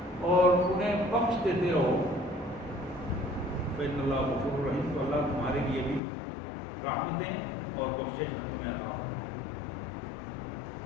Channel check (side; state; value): right; drops out; at 6.0 s